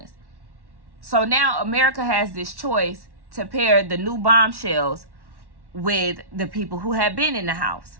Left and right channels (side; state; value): left; late; 1.1 ms